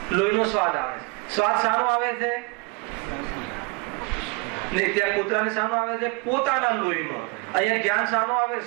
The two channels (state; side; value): quieter; left; 29.0 dB